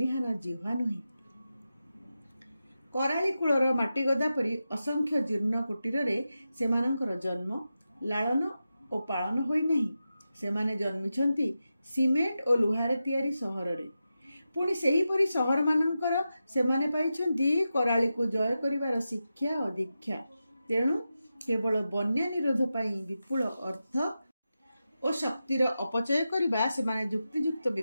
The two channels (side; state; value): both; inverted; correlation -0.91